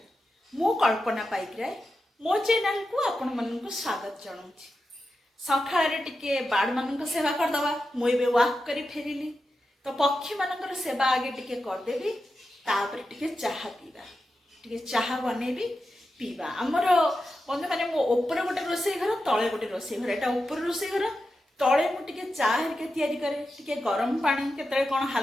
मु कल्पना पाइकराय मो channel को आपण मन को स्वागत जणाउछि. सखाळे टिके बाड मन को सेवा कर दवा. मु एबे वॉक करी फेरिली. तो पक्षी मानकर सेवा आगे टिके कर देबी. तापर टिके चाहा पीबा. टिके चाहा बनेबी पीवा. हमर बंधु माने मो ऊपर गोटे रोसई घर तळे गोटे रोसई घर. एटा ऊपर रोसई घर तळे मु टिके चाह हेरिके तयारी करे. टिके गरम पानी केतळे कोन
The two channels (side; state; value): both; normal; correlation 0.90